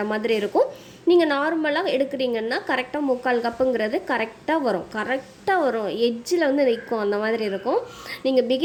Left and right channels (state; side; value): identical; both; correlation 1.00